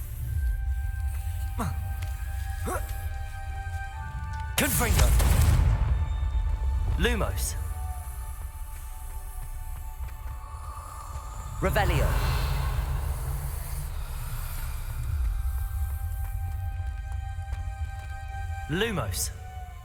Confringo. Lumos. Revelio. Lumos.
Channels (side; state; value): both; identical; correlation 1.00